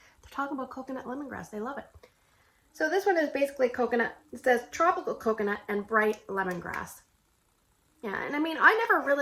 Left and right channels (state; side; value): identical; both; correlation 1.00